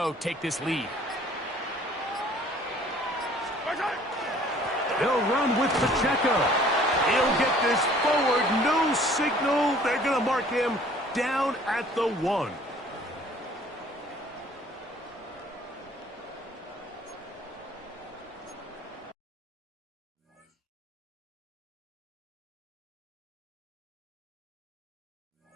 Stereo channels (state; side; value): normal; both; correlation 0.54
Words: take this lead. They'll run with Pacheco. He'll get this forward. No signal. They're going to mark him down at the 1.